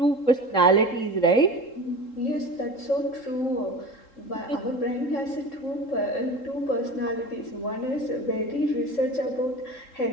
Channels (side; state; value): right; late; 3.7 ms